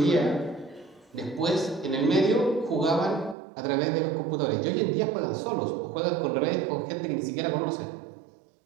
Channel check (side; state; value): left; drops out; at 3.4 s